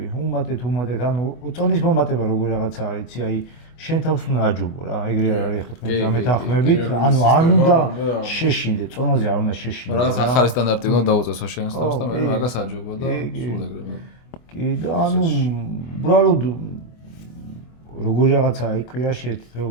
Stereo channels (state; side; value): late; right; 24 ms